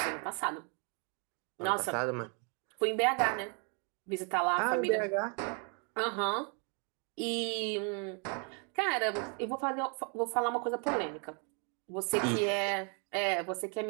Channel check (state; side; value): quieter; left; 37.6 dB